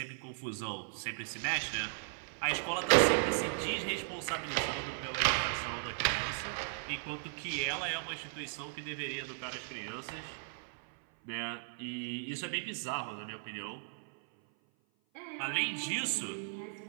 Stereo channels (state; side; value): silent; left; 53 dB below the other